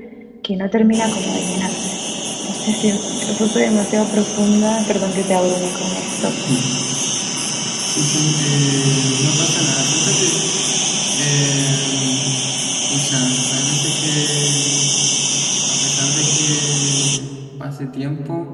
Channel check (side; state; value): both; identical; correlation 1.00